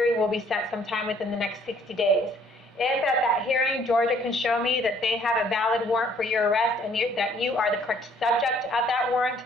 will be set sometime within the next 60 days. If at that hearing, Georgia can show me that they have a valid warrant for your arrest and that you are the correct subject of that warrant,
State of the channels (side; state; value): both; normal; correlation 0.61